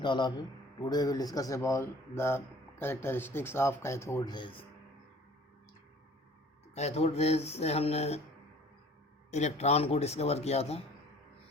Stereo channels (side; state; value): both; normal; correlation 0.50